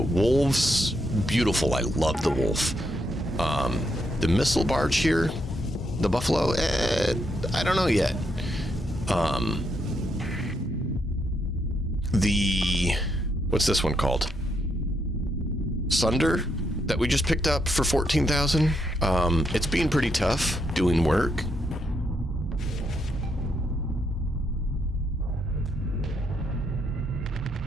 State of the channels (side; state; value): both; normal; correlation 0.78